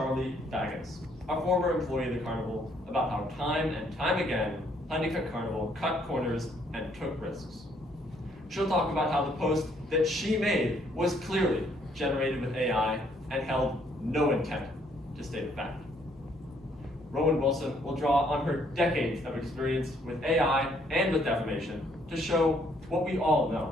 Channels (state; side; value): normal; both; correlation 0.67